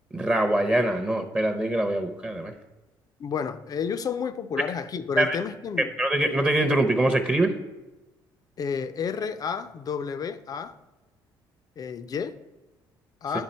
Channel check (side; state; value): both; normal; correlation 0.78